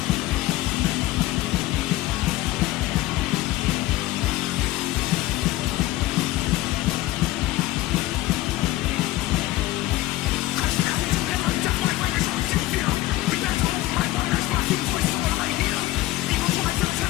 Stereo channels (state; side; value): quieter; right; 17.0 dB